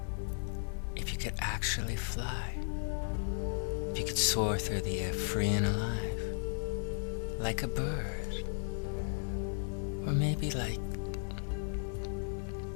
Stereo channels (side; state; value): right; silent; digital silence